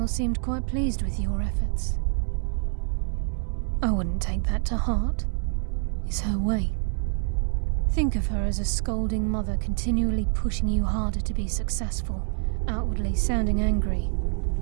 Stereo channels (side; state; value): left; silent; 59 dB below the other